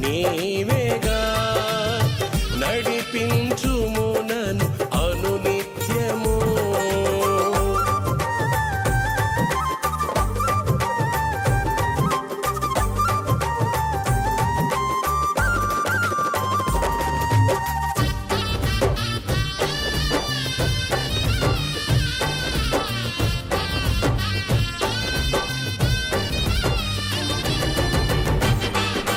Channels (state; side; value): identical; both; correlation 1.00